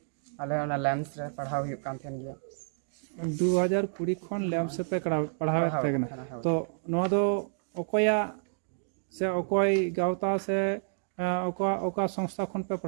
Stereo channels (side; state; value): left; silent; digital silence